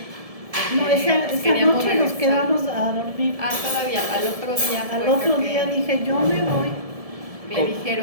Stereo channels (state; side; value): late; left; 1.7 ms